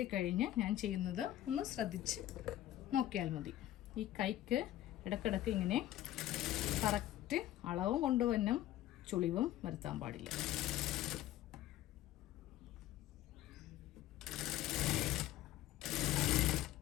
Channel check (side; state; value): right; quieter; 13.7 dB